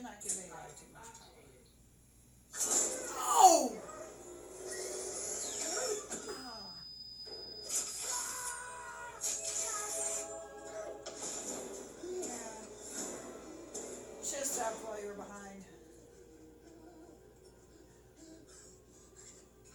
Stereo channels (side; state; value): both; identical; correlation 1.00